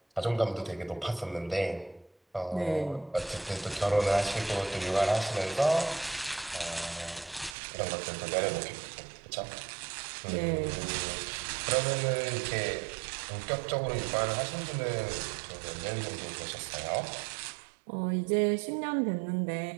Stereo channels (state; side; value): drops out; left; at 7.6 s